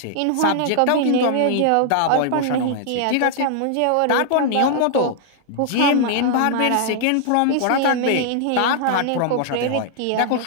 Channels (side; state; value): both; different; correlation -0.01